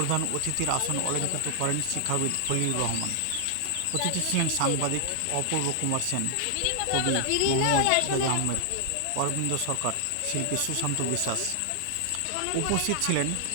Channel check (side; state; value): both; different; correlation 0.00